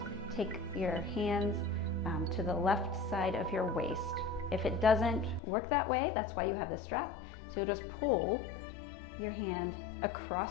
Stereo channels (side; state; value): right; drops out; at 5.4 s